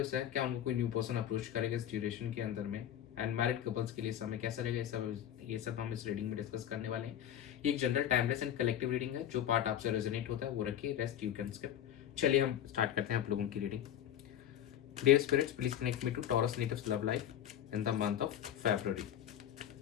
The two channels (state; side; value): quieter; right; 10.6 dB